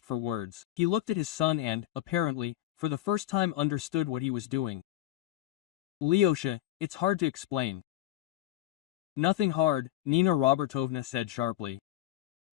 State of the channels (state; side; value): quieter; right; 14.3 dB